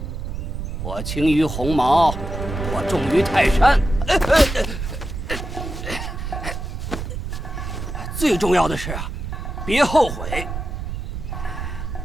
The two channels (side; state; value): right; noise; rumble, 6 dB below the sound